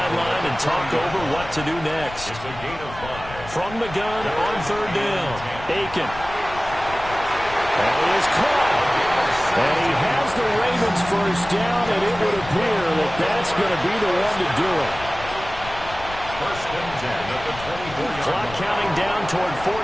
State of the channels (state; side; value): noise; left; rumble, 14 dB below the sound